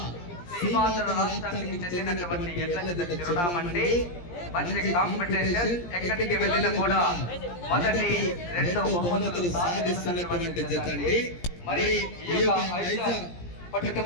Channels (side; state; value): right; late; 17 ms